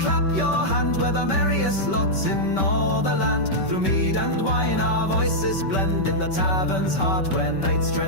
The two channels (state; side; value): late; right; 5.2 ms